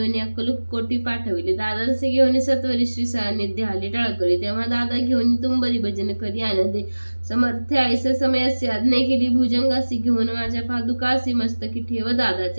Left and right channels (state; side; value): inverted; both; correlation -1.00